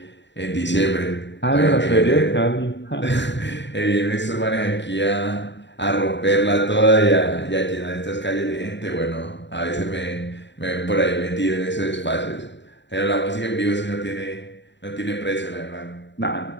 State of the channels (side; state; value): right; late; 0.52 ms